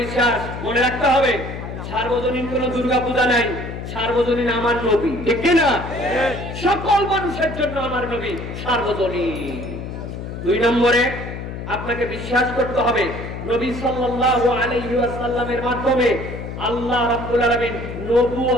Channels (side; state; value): left; noise; hum, 8 dB below the sound